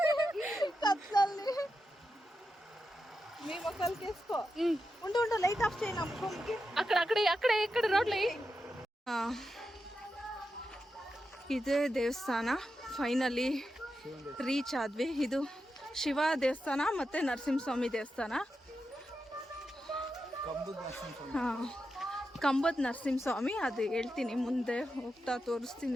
ಕತ್ಲಲ್ಲಿ. మీ మొక్కలకి వేసుకో. ఉండు లైట్ ఆఫ్ చేయి. నమ్మకంకి అక్కడ రోడ్లు. ಇದೇ ದೇವಸ್ಥಾನ ಫೈನಲಿ ರೀಚ್ ಆದ್ವಿ. ಇದು ಶಿವ ದೇವಸ್ಥಾನ ಮತ್ತೆ ನರಸಿಂಹಸ್ವಾಮಿ ದೇವಸ್ಥಾನ. ಹಾಂ, ಕಂಬದ ನರಸಿಂಹಸ್ವಾಮಿ, ಅದು ಹೇಳ್ತೀನಿ ಮುಂದೆ ಹೋಗ್ತಾ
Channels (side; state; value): both; normal; correlation 0.88